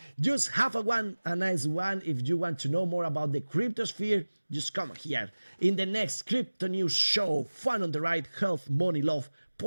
Just have a nice one. If you want to know more about the cryptosphere, just come here. In the next Crypto News show, fun on the ride, health, money, love,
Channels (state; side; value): inverted; both; correlation -1.00